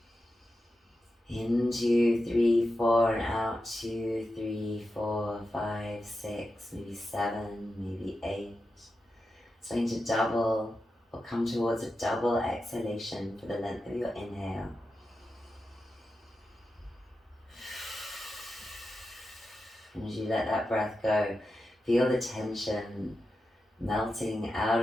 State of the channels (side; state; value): both; normal; correlation 0.90